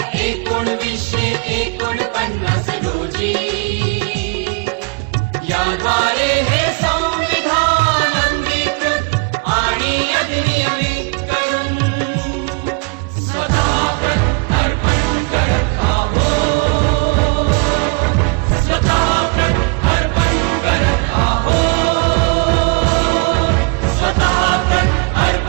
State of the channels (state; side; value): quieter; left; 32.2 dB